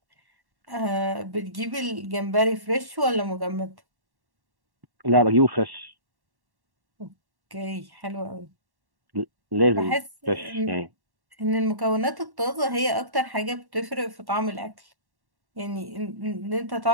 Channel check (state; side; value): late; left; 1.1 ms